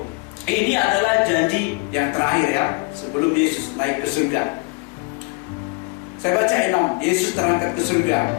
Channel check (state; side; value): quieter; right; 29.7 dB